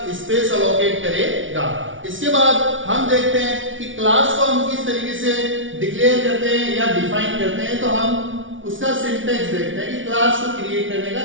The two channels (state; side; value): late; left; 0.56 ms